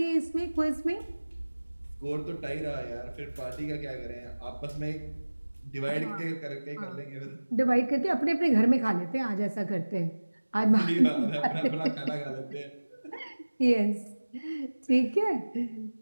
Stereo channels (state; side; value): inverted; both; correlation -1.00